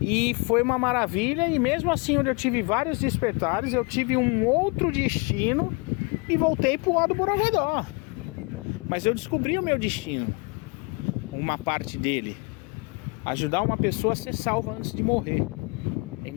E foi uma maravilha, e mesmo assim onde eu tive vários despertares, eu tive um outro destino e voltei pro lado do Borogodó. Mas eu descobri o meu destino, uma parte dele, ajudar uma pessoa a ser salva antes de morrer. Em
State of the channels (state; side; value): quieter; right; 30.3 dB